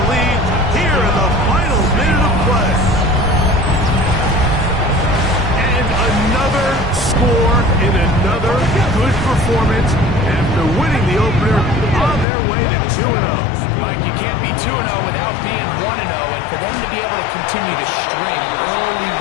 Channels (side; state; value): right; drops out; at 12.2 s